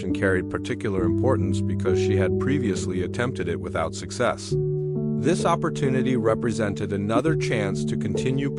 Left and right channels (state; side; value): identical; both; correlation 1.00